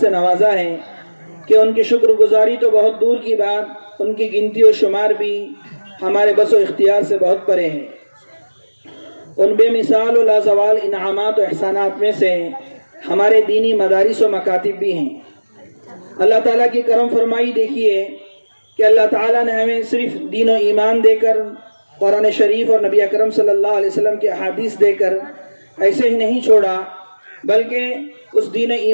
نوازا ہے کہ ان کی شکر گزاری تو بہت دور کی بات، ان کی گنتی و شمار بھی ہمارے بس و اختیار سے بہت پرے ہیں. ان بے مثال و لازوال انعامات و احسانات میں سے ہمارے دینی مدارس و مکاتب بھی ہیں. اللہ تعالیٰ کی کرم فرمائی دیکھیے کہ اللہ تعالیٰ نے ہمیں صرف دین و ایمان دے کر، قرآن شریف اور نبی اکرم صلی اللہ علیہ وسلم کے احادیث دے کر ایسے ہی نہیں چھوڑا، بلکہ اس دین و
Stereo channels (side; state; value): both; inverted; correlation -1.00